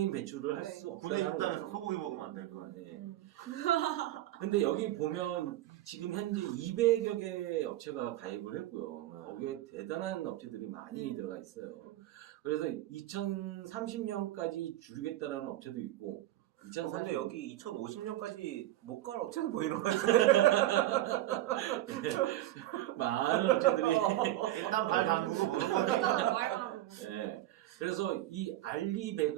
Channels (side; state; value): left; quieter; 14.8 dB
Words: 배출을 할 수 군의 없다는 식당에서 거죠. 소고기 먹으면 안 될 거 아니야. 네. 근데 여기 보면 지금 현재 200여 개 업체가 가입을 했고요. 거기에 대단한 업체들이 많이 들어가 있어요. 그래서 2030년까지 줄이겠다라는 업체도 있고, 근데 여기 2050년까지 못 갈 업체도 보이는 것 같아요. 많은 업체들이. 일단 발 담그고 보는 거지. 일단 말만. 네. 그래서 이